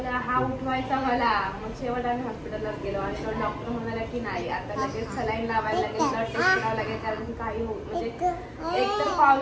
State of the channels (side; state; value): both; identical; correlation 1.00